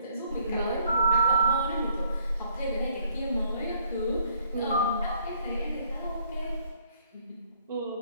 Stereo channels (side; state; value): both; inverted; correlation -0.65